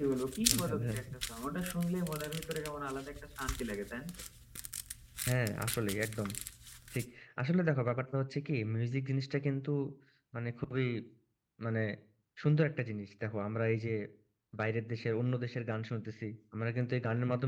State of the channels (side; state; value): both; identical; correlation 1.00